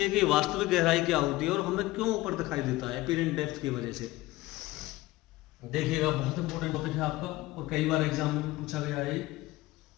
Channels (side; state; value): right; quieter; 18.7 dB